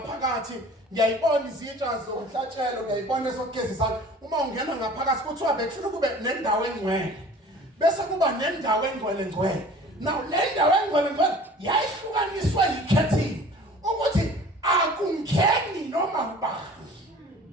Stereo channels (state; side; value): normal; both; correlation 0.45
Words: ngiyayibona izitsha zomhlatshelo ngiyayibona esokugezisa uma ungena ngaphakathi kuthiwa bekufuna kube nendawo engcwele bese kuba nendawo engcwele now le ndawo engcwele yayihlukaniswe yi-curtain ukuthi akungeni noma ubani